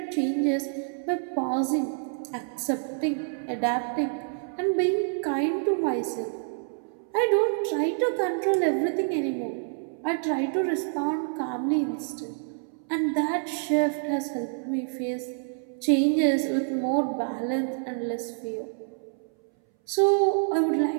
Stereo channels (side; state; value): left; silent; 60 dB below the other